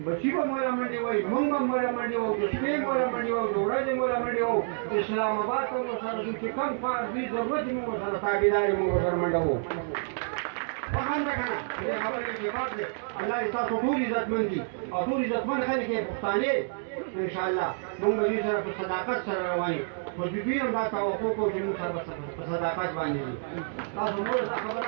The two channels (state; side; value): silent; left; digital silence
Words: بچی به مولا منډې وایي مونږ به مولا منډې وو د شپې مولا منډې وو د ورځې مولا منډې وو اسلام آباد ته مو سره ځو چې کوم کار دوی ضرورت یې مونږ سره تابعداري مونږ سره منډه وو فهم ده که نه دې خبرې کې بات دی الله دې ستاسو ټول عزتمند دي او ټول عزتمند خلک یې پښتانه انشاءالله مونږ به دوی سره په صداقت سره روان یو خو دوی هم دا توقع کوو چې مونږ سره په صداقت باندې دي تاسو نور دا